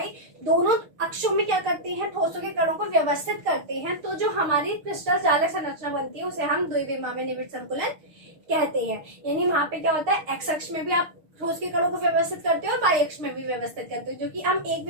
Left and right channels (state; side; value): late; left; 6.5 ms